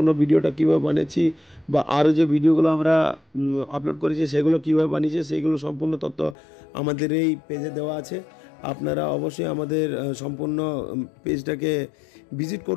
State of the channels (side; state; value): right; drops out; at 6.4 s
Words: ভিডিওটা কীভাবে বানিয়েছি বা আরও যে ভিডিওগুলো আমরা আপলোড করেছি সেগুলো কীভাবে বানিয়েছি সেইগুলো সম্পূর্ণ তথ্য আমাদের এই পেজে দেওয়া আছে। আপনারা অবশ্যই আমাদের সম্পূর্ণ পেজটাকে ভিজিট